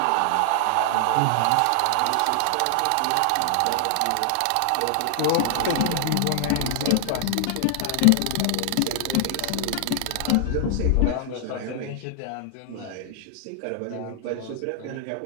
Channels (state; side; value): different; both; correlation 0.00